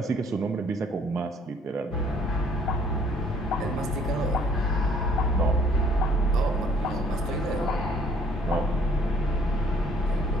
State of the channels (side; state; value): both; normal; correlation 0.60